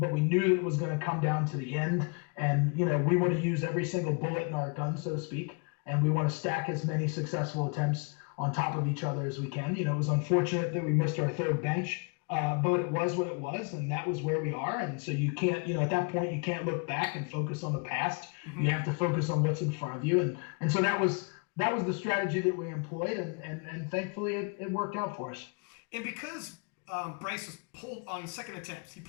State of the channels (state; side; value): quieter; right; 34.5 dB